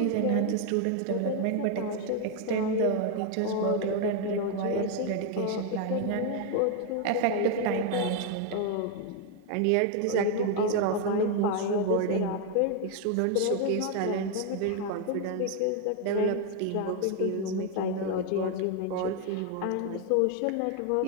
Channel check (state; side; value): different; both; correlation 0.01